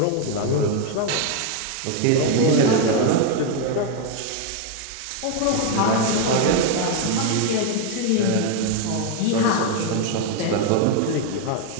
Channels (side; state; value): both; different; correlation 0.01